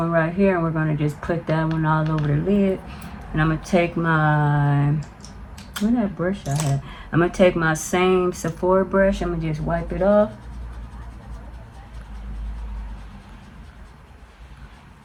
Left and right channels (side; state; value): both; identical; correlation 1.00